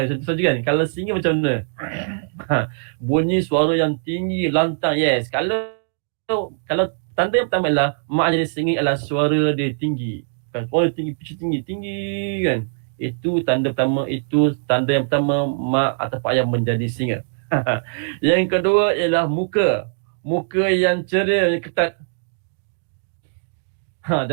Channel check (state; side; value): silent; left; digital silence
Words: Contoh kan. Kalau singa macam mana? Bunyi suara yang tinggi, lantang. Yes. Kalau tanda yang pertama ialah mak jadi singa ialah suara dia tinggi. Kan? Suara tinggi, pitch tinggi kan. Itu tanda yang pertama mak atau ayah menjadi singa. Yang kedua ialah muka. Muka yang ceria, yang ketat.